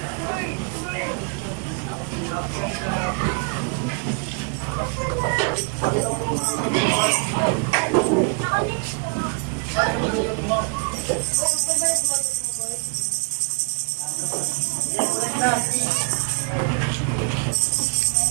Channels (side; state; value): left; quieter; 36.2 dB